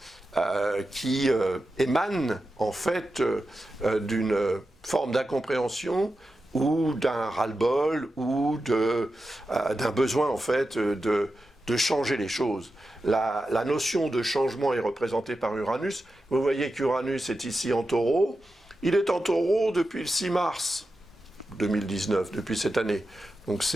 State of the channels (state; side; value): normal; both; correlation 0.91